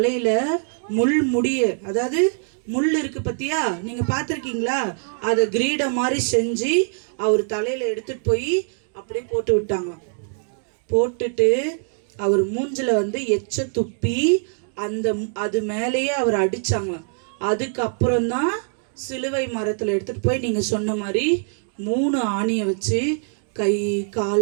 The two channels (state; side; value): silent; left; 62 dB below the other